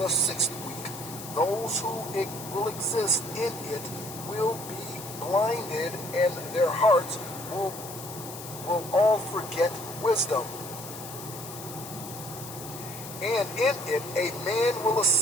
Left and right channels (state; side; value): noise; left; hiss, 12 dB below the sound